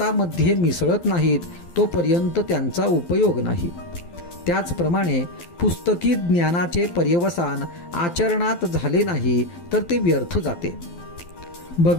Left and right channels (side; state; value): right; late; 12 ms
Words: मिसळत नाहीत तोपर्यंत त्यांचा उपयोग नाही. त्याचप्रमाणे पुस्तकी ज्ञानाचे पर्यवसान आचरणात झाले नाही तर ते व्यर्थ जाते.